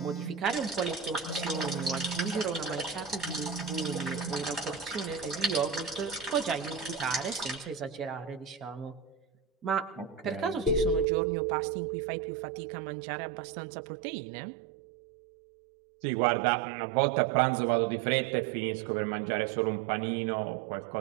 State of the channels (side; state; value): left; drops out; at 11.1 s